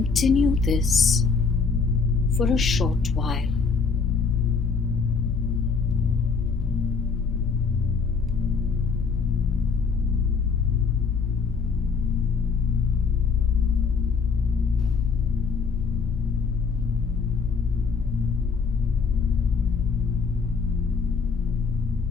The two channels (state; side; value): quieter; right; 5.1 dB